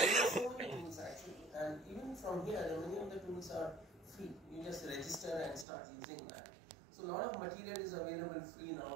so many tools actually, and even from here, many of the tools are free. You just register and start using that. So a lot of material is available free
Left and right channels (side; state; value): left; drops out; at 5.7 s